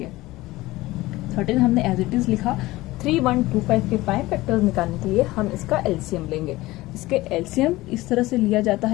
13 हमने एज इट इज लिखा। 3125 के प्राइम फैक्टर्स निकालने के लिए हम इसका एलसीएम लेंगे। इसके एलसीएम इस तरह से लिया जाता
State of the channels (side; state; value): right; quieter; 18.7 dB